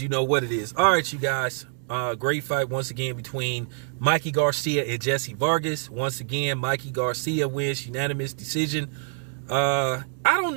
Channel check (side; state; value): left; silent; 56 dB below the other